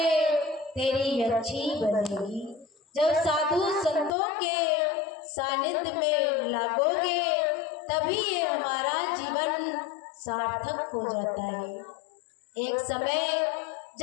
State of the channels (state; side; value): drops out; right; at 4.1 s